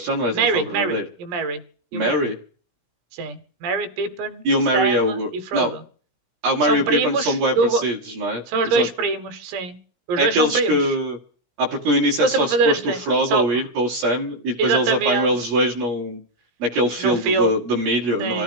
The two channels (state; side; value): late; left; 17 ms